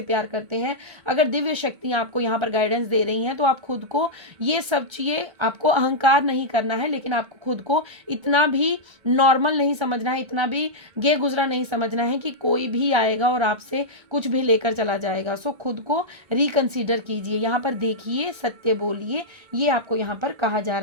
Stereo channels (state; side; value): late; left; 1.3 ms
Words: प्यार करते हैं, अगर दिव्य शक्तियाँ आपको यहाँ पर गाइडेंस दे रही हैं, तो आप खुद को ये सब चीज़ें, आपको अहंकार नहीं करना है, लेकिन आपको खुद को इतना भी नॉर्मल नहीं समझना है, इतना भी गे गुजरा नहीं समझना है कि कोई भी आएगा और आपसे कुछ भी लेकर चला जाएगा। सो खुद को रिकंसीडर कीजिए। यहाँ पर देखिए, सत्य बोलिए, ये आपको यहाँ पर कहा जा